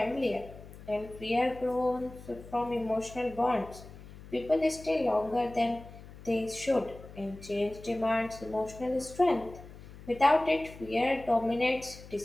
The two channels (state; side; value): noise; left; hum, 17 dB below the sound